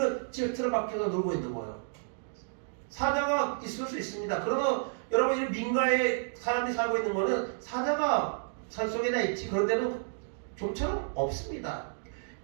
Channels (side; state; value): left; silent; digital silence